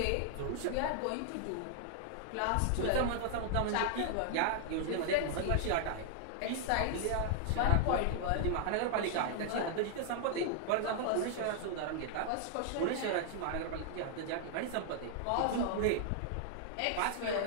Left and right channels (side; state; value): both; different; correlation -0.01